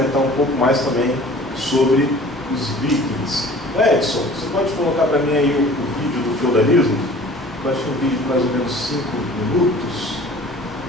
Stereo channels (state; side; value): normal; both; correlation 0.47